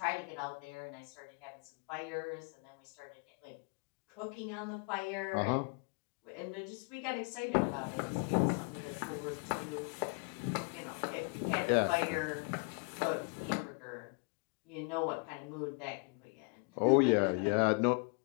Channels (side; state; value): right; quieter; 35.5 dB